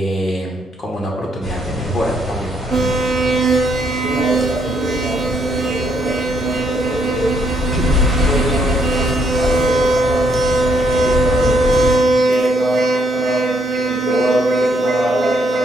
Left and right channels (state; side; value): normal; both; correlation 0.72